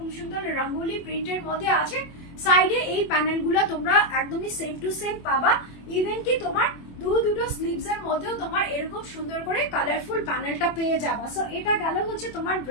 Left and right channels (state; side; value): late; right; 24 ms